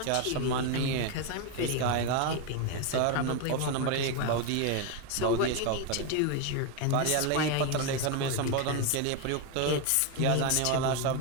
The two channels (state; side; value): different; both; correlation 0.02